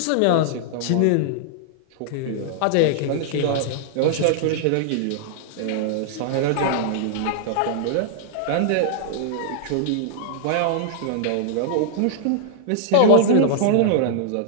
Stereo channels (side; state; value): both; different; correlation -0.01